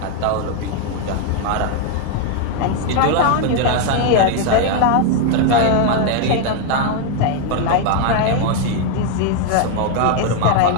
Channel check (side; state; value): both; different; correlation 0.00